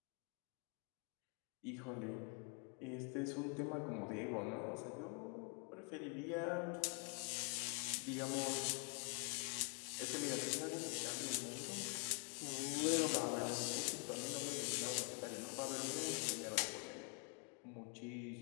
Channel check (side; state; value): right; quieter; 36.7 dB